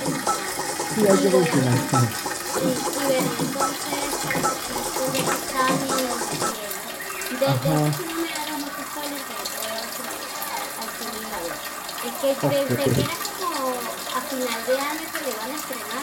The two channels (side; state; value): both; identical; correlation 1.00